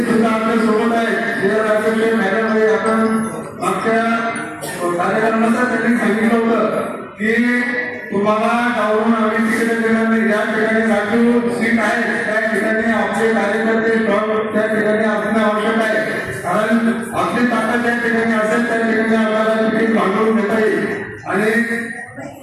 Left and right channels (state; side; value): identical; both; correlation 1.00